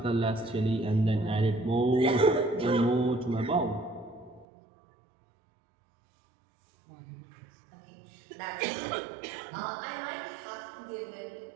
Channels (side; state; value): left; drops out; at 4.5 s